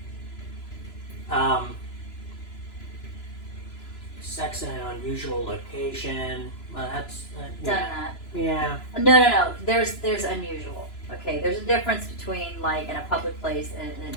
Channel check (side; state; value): right; late; 2.9 ms